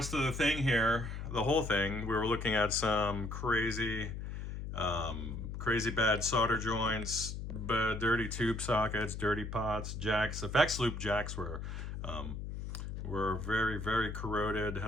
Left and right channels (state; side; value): noise; left; hum, 6 dB below the sound